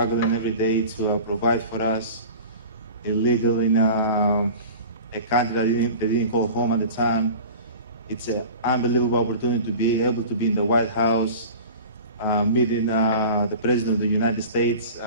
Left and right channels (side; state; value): both; inverted; correlation -0.38